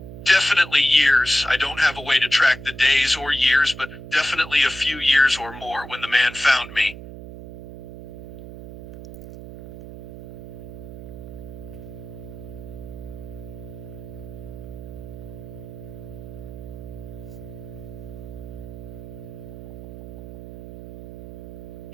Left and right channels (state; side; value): noise; right; hum, 12 dB below the sound